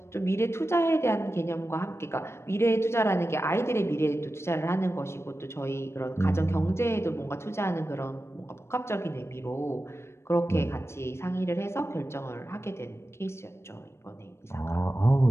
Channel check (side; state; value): right; late; 0.13 ms